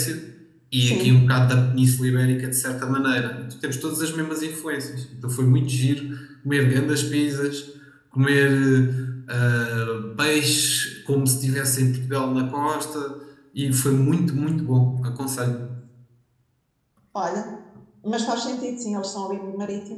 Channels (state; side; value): identical; both; correlation 1.00